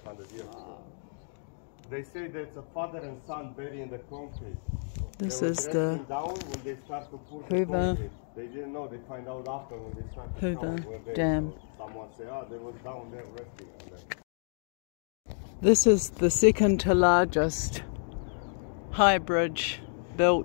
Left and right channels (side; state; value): right; silent; digital silence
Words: 100 years ago. They say that it's a father and son buried in the concrete. This they is the down when they start to pour Hoover. They didn't know. They find out after when they start to Hoover count Dam. So someone say, "Oh, they was down there resting." This is the second to largest high bridge